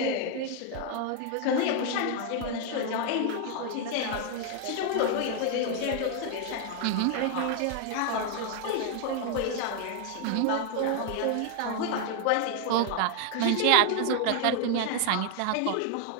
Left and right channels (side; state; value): both; different; correlation 0.00